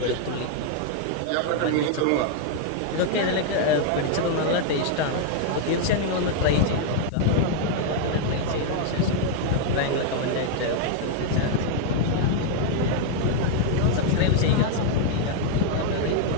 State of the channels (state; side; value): different; both; correlation 0.00